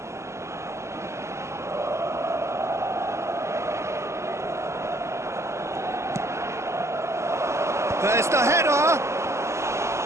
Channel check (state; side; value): late; left; 0.13 ms